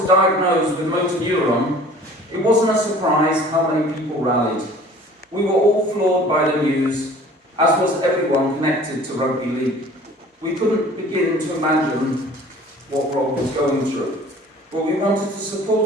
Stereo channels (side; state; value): both; normal; correlation 0.48